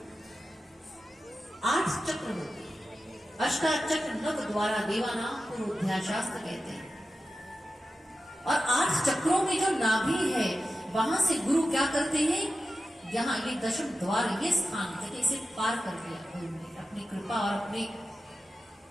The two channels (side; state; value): both; normal; correlation 0.92